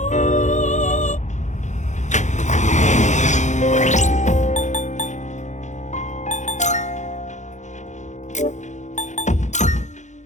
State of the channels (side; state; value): right; late; 0.35 ms